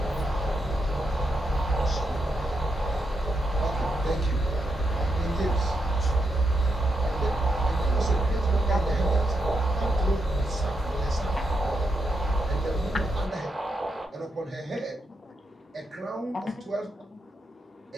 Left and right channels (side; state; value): both; normal; correlation 0.82